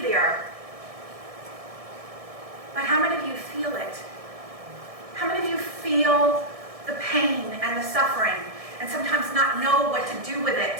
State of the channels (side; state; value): left; late; 1.6 ms